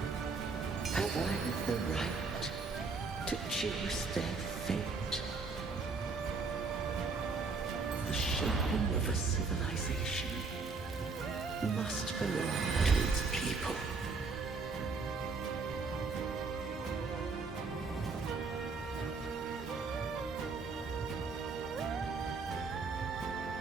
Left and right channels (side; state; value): left; quieter; 4.4 dB